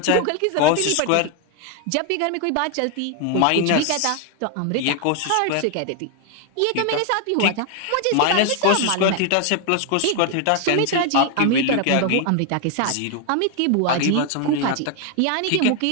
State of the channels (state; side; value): different; both; correlation 0.01